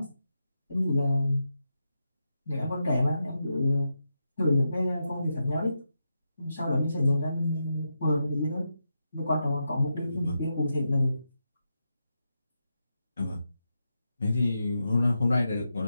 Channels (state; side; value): inverted; both; correlation -0.86